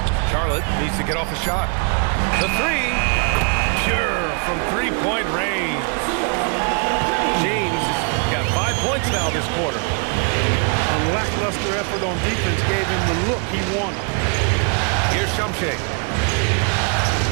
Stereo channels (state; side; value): quieter; left; 39.2 dB